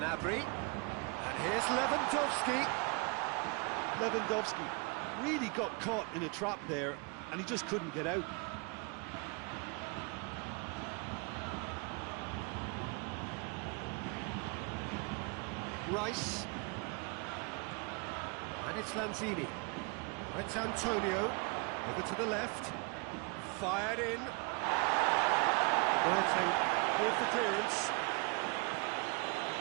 And here's Lewandowski. Lewandowski really got caught in a trap there and he just couldn't get out. Rice. And it's Lanzini. It's Antonio. Over to the left. Fired in. Boateng with the clearance.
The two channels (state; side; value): quieter; left; 31.6 dB